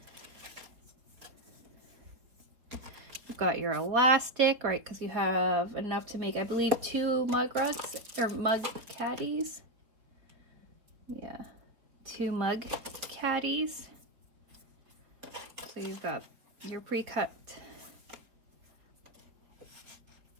You've got your elastic, right, because you have enough to make, I believe, 2 mug rugs, or mug caddies. Yeah, 2 mug caddies. So you've got your pre-cut.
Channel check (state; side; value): late; left; 4.3 ms